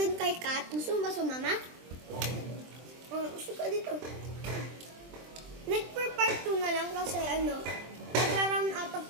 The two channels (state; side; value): late; left; 23 ms